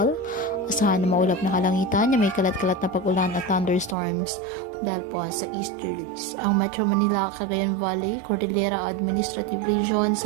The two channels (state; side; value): drops out; left; at 4.0 s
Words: Asahan na maulap na kalangitan na may kalat-kalat na pag-ulan at thunderstorms dahil po sa easterlies. Ang Metro Manila, Cagayan Valley, Cordillera Administrative Region,